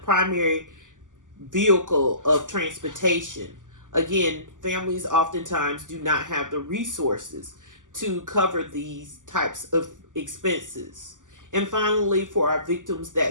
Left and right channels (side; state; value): left; late; 0.87 ms